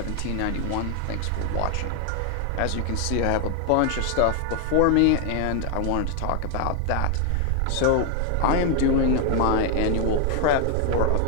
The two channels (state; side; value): different; both; correlation 0.00